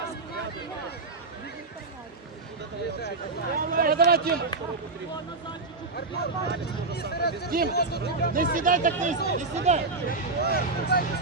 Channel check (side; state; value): left; quieter; 3.6 dB